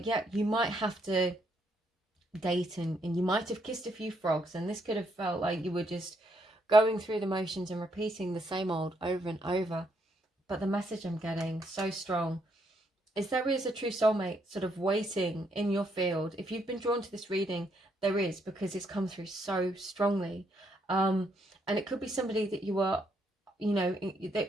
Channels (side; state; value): both; normal; correlation 0.74